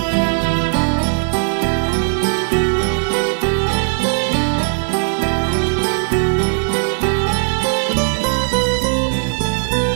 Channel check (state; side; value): silent; left; digital silence